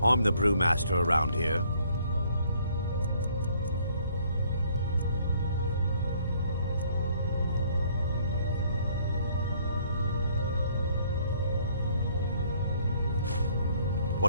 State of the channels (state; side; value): inverted; both; correlation -0.63